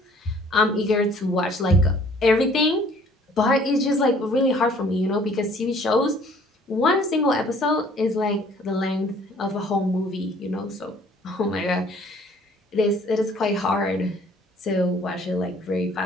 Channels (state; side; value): normal; both; correlation 0.56